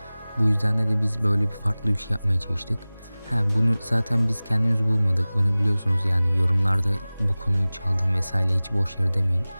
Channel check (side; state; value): both; inverted; correlation -0.99